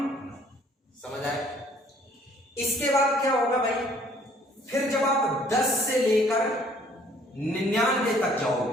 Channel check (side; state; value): both; normal; correlation 0.59